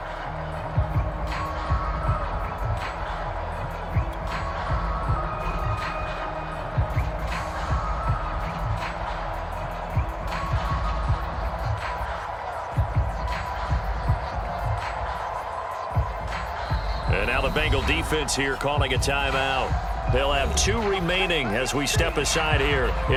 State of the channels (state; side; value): identical; both; correlation 1.00